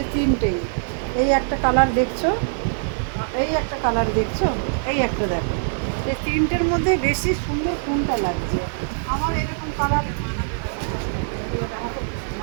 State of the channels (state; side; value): silent; left; digital silence